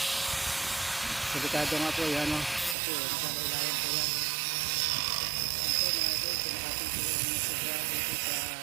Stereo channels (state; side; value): drops out; left; at 2.8 s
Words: Delikado nga po yan, no? Kasi naglalailayan po yan. Yan po mga idol, pinakatin po yung sobra dito sa